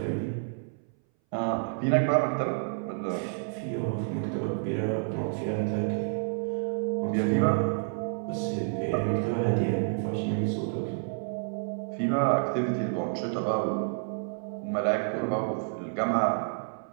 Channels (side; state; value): left; silent; 58 dB below the other